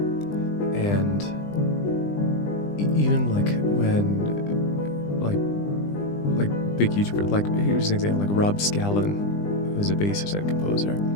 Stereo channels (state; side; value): late; right; 20 ms